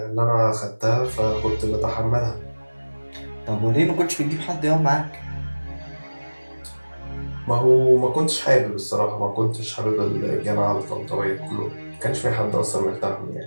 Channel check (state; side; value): inverted; both; correlation -1.00